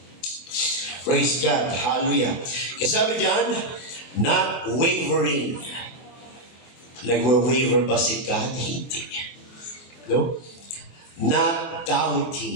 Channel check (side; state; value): right; late; 24 ms